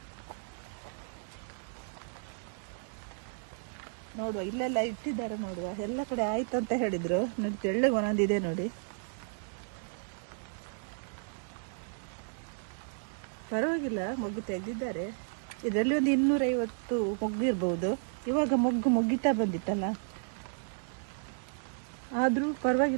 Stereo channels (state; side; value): silent; left; digital silence